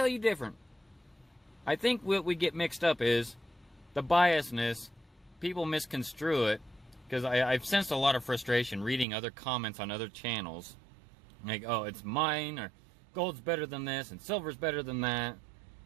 you different? I think what we get mixed up is the biasness. People misconstrue it, because I've sensed a lot of frustration reading other comments on other channels. Like, oh, it's mine, or gold's better than this, and silver's better than that.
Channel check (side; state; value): left; drops out; at 9.1 s